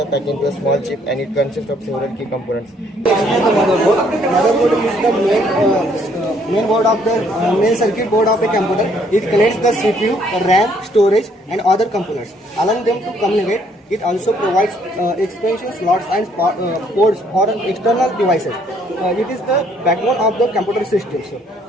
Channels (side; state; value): both; normal; correlation 0.66